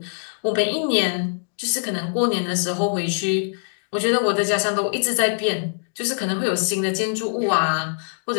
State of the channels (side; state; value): right; silent; digital silence